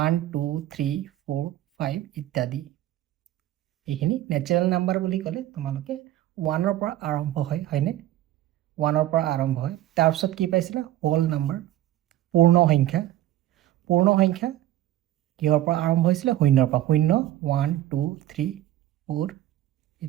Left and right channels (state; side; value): quieter; left; 13.8 dB